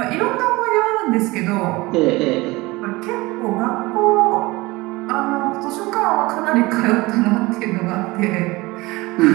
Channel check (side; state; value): left; quieter; 21.8 dB